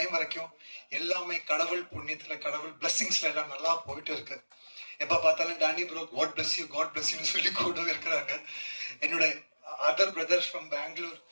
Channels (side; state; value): both; inverted; correlation -1.00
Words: வரைக்கும் எல்லாமே கடவுள் புண்ணியத்துல, கடவுள் பிளெஸிங்ஸ்ல எல்லாம் நல்லா போயிட்டு இருக்கு. எப்ப பார்த்தாலும் டானி ப்ரோ காட் பிளஸ் யூன்னு சொல்லி கூட இருக்கிறாங்க. என்னோட அதர் பிரதர்ஸ் ஃப்ரம் பெங்களூர்,